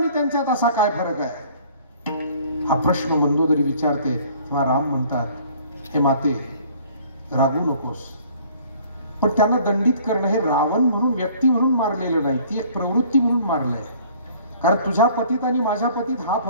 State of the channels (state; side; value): inverted; both; correlation -0.54